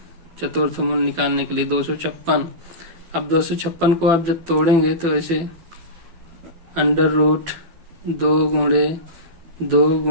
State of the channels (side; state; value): left; late; 12 ms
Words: चतुर्थ मूल निकालने के लिए 256। अब 256 को आप जब तोड़ेंगे तो ऐसे अंडर रूट 2 गुणे 2